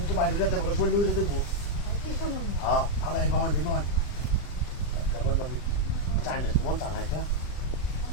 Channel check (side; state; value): right; late; 40 ms